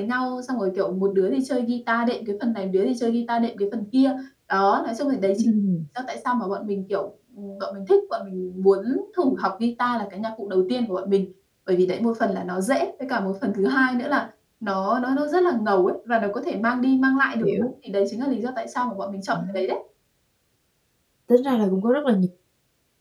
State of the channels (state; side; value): identical; both; correlation 1.00